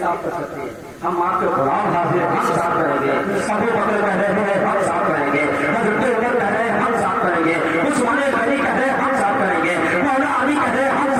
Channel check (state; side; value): identical; both; correlation 1.00